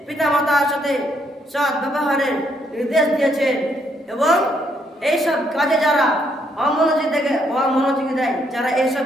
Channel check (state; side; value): normal; both; correlation 0.73